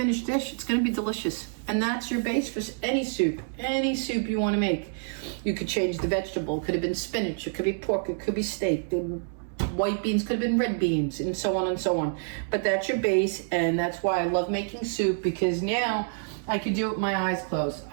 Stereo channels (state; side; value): silent; left; digital silence